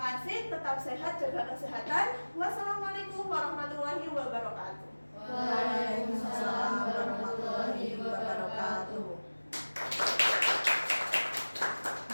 tetap sehat, jaga kesehatan. Wassalamualaikum warahmatullahi wabarakatuh. Waalaikumsalam warahmatullahi wabarakatuh.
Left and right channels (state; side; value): inverted; both; correlation -1.00